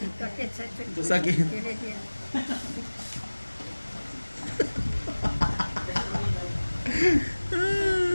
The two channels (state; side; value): inverted; both; correlation -1.00